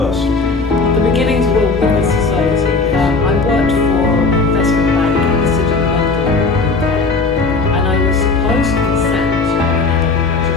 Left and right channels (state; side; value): quieter; right; 4.0 dB